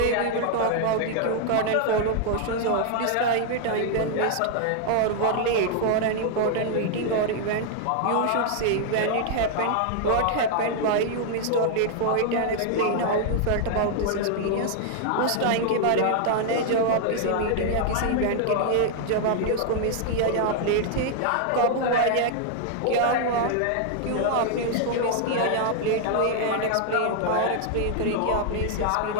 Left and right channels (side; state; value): both; different; correlation -0.01